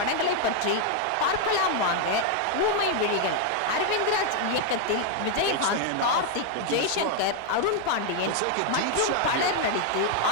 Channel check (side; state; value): both; different; correlation 0.00